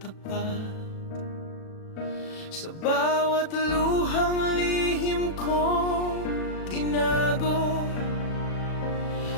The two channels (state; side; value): late; right; 37 ms